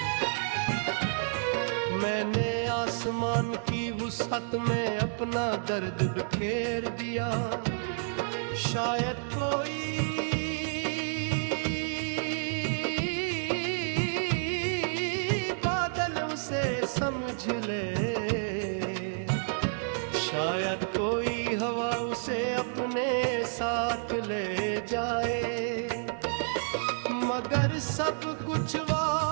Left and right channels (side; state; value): left; silent; digital silence